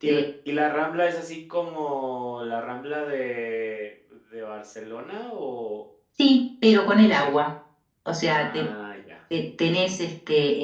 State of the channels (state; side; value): identical; both; correlation 1.00